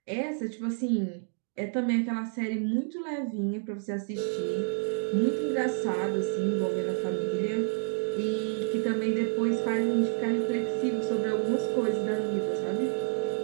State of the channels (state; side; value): silent; left; 58 dB below the other